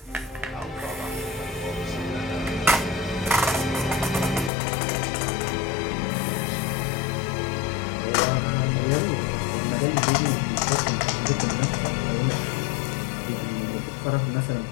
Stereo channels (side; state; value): right; drops out; at 4.5 s